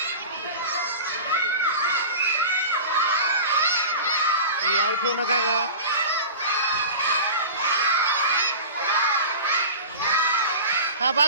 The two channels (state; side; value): inverted; both; correlation -0.33